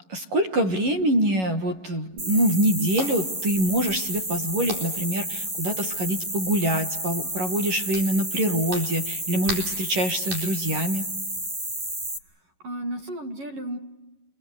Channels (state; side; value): late; left; 11 ms